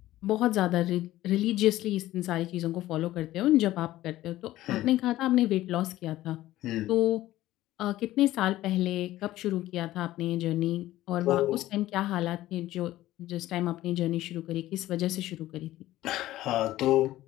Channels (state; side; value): quieter; right; 15.3 dB